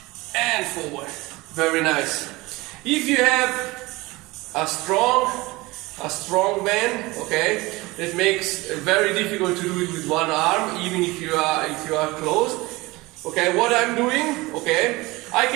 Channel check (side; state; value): left; quieter; 21.8 dB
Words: and forward. Very nice. If you have a strong band, okay, it makes it very difficult to do it with one arm, even if you are closed. Okay, what I'm doing, okay, I